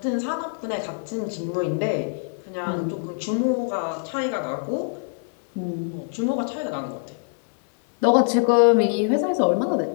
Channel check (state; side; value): silent; right; digital silence